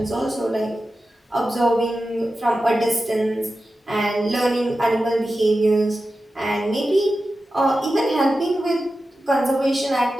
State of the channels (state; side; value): normal; both; correlation 0.93